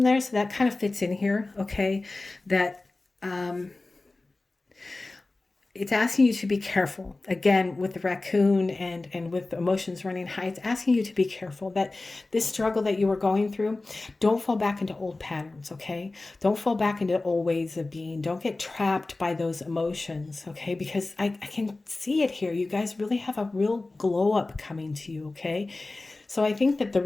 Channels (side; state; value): right; quieter; 3.2 dB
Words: there. So that kind of fits in here. Okay. That, it's asking you to be careful. Again, with the raccoon and with emotions running high, it's asking you to be careful that this struggle that you were going through, don't fall back into old patterns, okay? Don't fall back into old ways of being. Don't get trapped by those emotions, okay? Because I can see it here. You guys really have a real glow up coming to you, okay? So I think that the